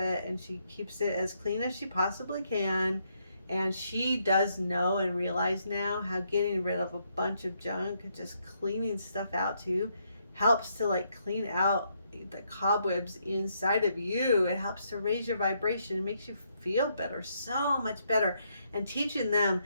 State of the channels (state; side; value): inverted; both; correlation -0.75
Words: and she keeps it as clean as she possibly can. And she does know and realize now how getting rid of a bunch of junk, just cleaning stuff out too, helps to like clean out the cobwebs inside of you. It helps to raise your vibration. It makes you feel better, so much better. And teaching them